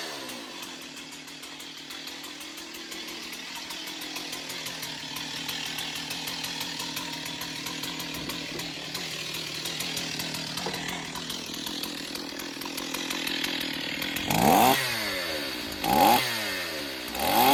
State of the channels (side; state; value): both; identical; correlation 1.00